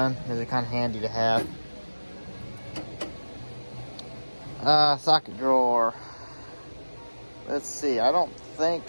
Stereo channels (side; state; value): both; inverted; correlation -1.00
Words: they're kind of handy to have. Socket drawer. Let's see, I don't think